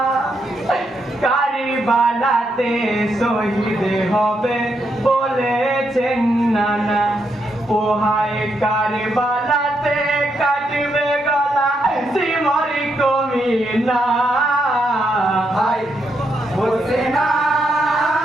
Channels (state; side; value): normal; both; correlation 0.80